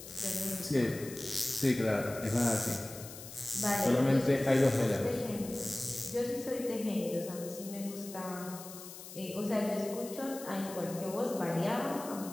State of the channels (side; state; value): left; noise; hiss, 14 dB below the sound